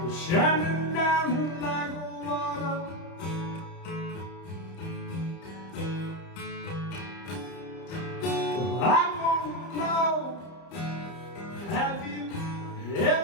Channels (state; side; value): late; right; 30 ms